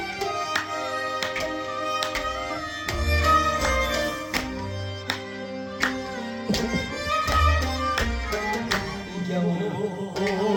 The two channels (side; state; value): both; identical; correlation 1.00